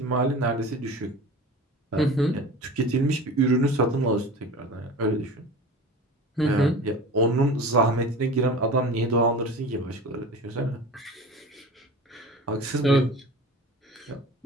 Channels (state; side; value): normal; both; correlation 0.35